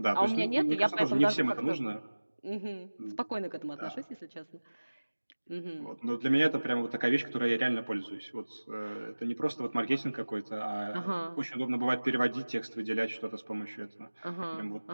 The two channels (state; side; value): inverted; both; correlation -1.00